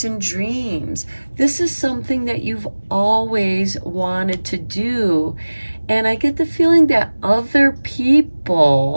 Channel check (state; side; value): inverted; both; correlation -1.00